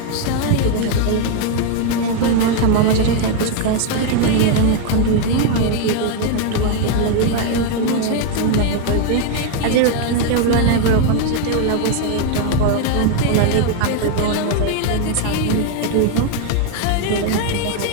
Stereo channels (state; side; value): different; both; correlation 0.01